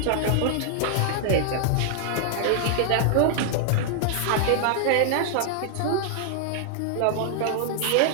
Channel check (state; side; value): different; both; correlation -0.01